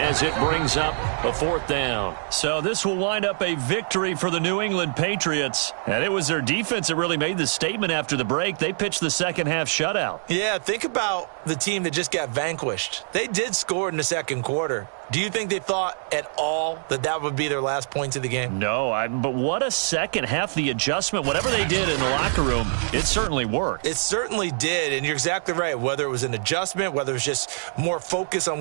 it brings up a 4th down. So this will wind up a victory for the New England Patriots. And it was their defense that really made the statement after the break. They pitched the second half shutout. Yeah, think about the team that just got vanquished. They did score in the second quarter. Do you think they thought at all that that would be their last points of the game? No, but what a second half. The adjustment, whatever they did in the locker room, it certainly worked. It certainly did, and you're exactly right. Whether it was an adjustment, whether it was just more focus on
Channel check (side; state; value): left; silent; 60 dB below the other